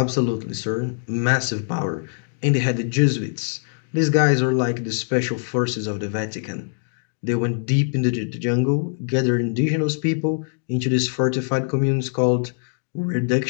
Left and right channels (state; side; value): silent; right; digital silence